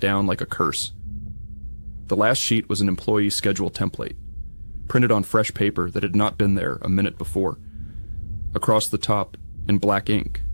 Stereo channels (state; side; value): inverted; both; correlation -1.00